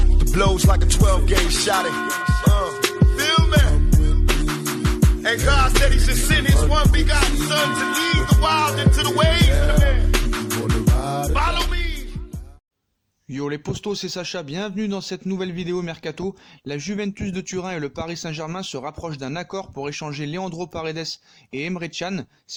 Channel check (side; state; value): both; identical; correlation 1.00